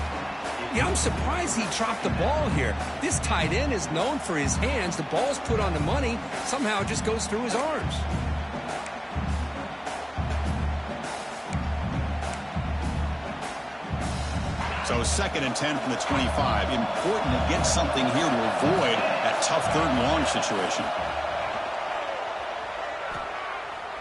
Yeah, I'm surprised he dropped the ball here. This tight end is known for his hands. The ball's put on the money. Somehow it just goes through his arms. So 2nd and 10 from the 25. Important to get something here to avoid that tough third and long situation.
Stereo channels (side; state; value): both; identical; correlation 1.00